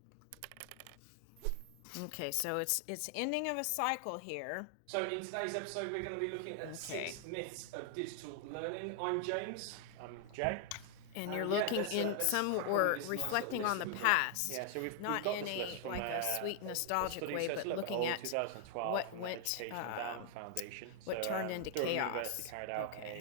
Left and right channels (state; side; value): different; both; correlation 0.00